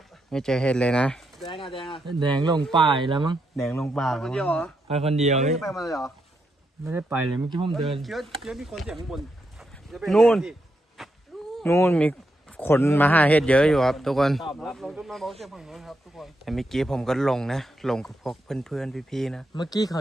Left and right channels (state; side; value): normal; both; correlation 0.82